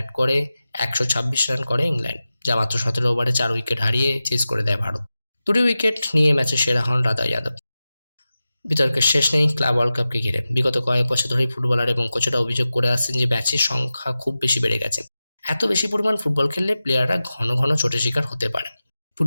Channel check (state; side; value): inverted; both; correlation -0.94